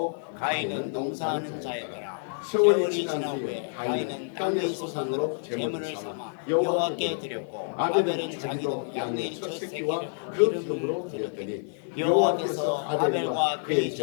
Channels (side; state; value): right; silent; digital silence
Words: 가인은 농사하는 자였더라. 세월이 지난 후에 가인은 땅의 소산으로 제물을 삼아 여호와께 드렸고 아벨은 자기도 양의 첫 새끼와 그 기름으로 드렸더니 여호와께서 아벨과 그의